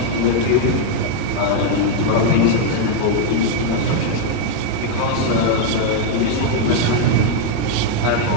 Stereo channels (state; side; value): different; both; correlation 0.00